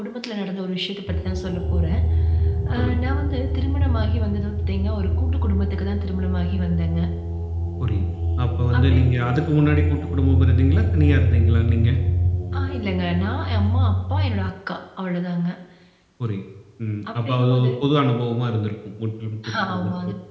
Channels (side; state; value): both; identical; correlation 1.00